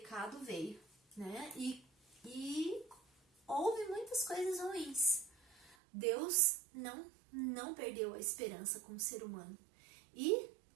veio, né? E houve muitas coisas ruins. Deus não perdeu a esperança como ser humano e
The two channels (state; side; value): drops out; left; at 5.8 s